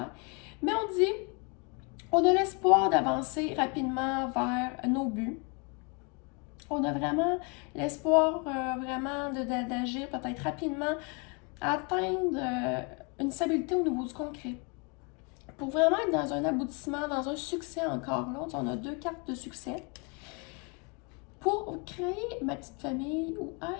Mais on dit, on a l'espoir d'avancer rapidement vers nos buts. On a vraiment l'espoir vraiment d'agir peut-être rapidement, atteindre une stabilité au niveau du concret. Pour vraiment être dans un aboutissement, dans un succès encore là, on a deux cartes de succès. Pour créer ma petite famille ou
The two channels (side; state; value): right; quieter; 33.1 dB